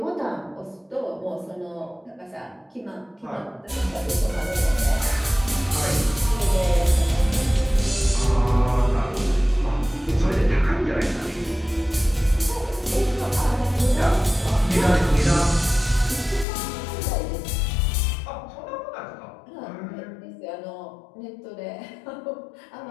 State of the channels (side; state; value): right; drops out; at 16.4 s